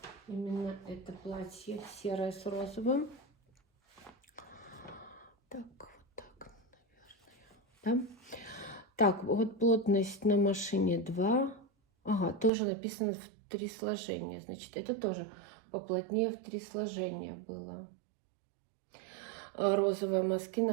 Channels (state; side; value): drops out; left; at 12.5 s